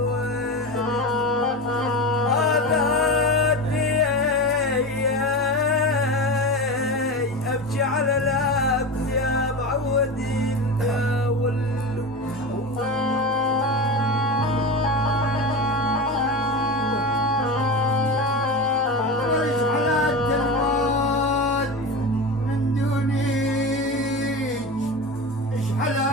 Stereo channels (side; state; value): both; normal; correlation 0.25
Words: على الابد يا معودين يا ولو على التلفون من دونيك اشحال